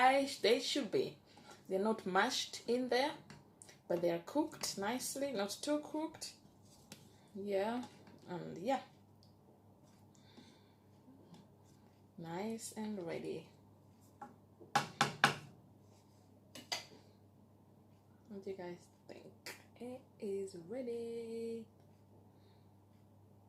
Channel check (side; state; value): both; identical; correlation 1.00